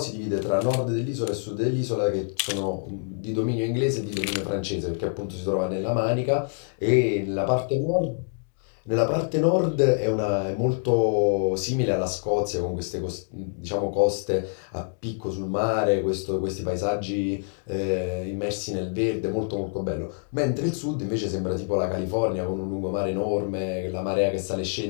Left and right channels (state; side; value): silent; right; digital silence